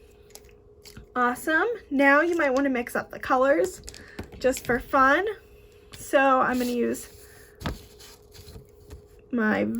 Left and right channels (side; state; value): both; identical; correlation 1.00